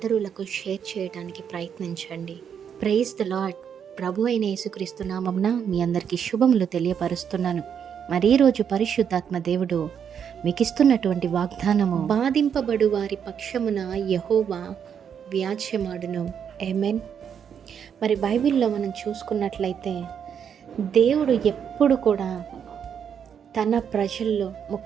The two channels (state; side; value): quieter; left; 7.9 dB